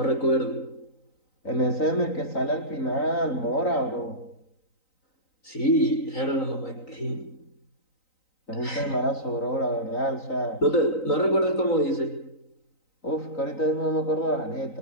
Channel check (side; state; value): right; late; 3.9 ms